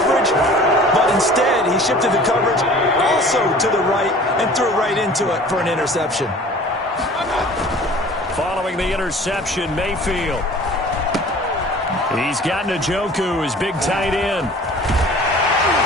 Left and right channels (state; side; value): normal; both; correlation 0.46